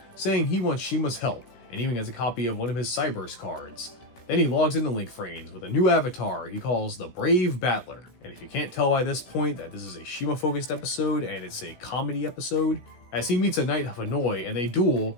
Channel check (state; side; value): late; right; 16 ms